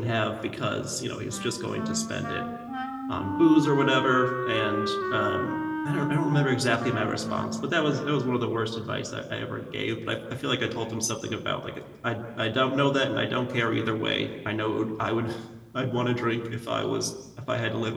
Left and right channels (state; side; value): identical; both; correlation 1.00